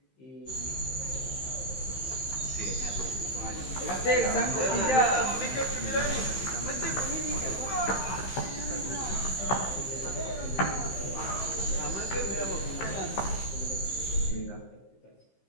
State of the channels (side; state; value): right; late; 15 ms